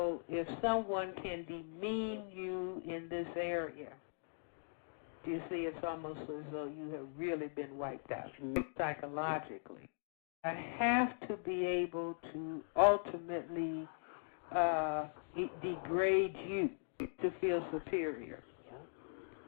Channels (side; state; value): right; silent; digital silence